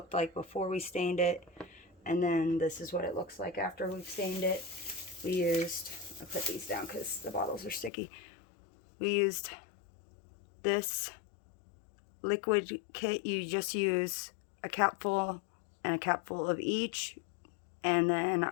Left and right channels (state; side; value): drops out; right; at 7.9 s